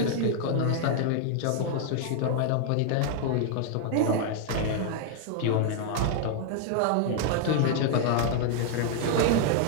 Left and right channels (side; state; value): both; different; correlation -0.01